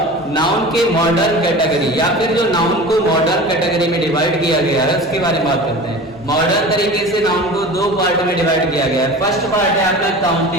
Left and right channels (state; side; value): normal; both; correlation 0.36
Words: नाउन के मॉडर्न कैटेगरी या फिर जो नाउन को मॉडर्न कैटेगरी में डिवाइड किया गया है उसके बारे में बात करते हैं। मॉडर्न तरीके से नाउन को दो पार्ट में डिवाइड किया गया है। फर्स्ट पार्ट है आपका